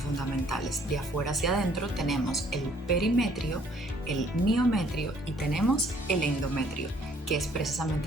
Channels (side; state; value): both; normal; correlation 0.62